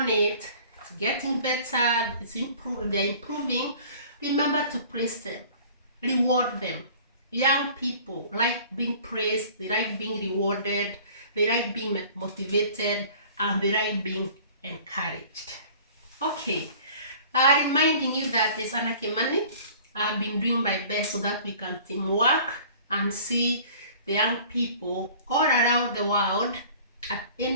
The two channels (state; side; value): inverted; both; correlation -0.48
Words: it, it's getting better, they're improving, remember to praise them, reward them. Young people like being praised, they like being rewarded, they like being motivated, and they like being encouraged. Okay, reminding you that it's Anna Kimani. I've been doing my best so that we can teamwork and see the young people all around the world at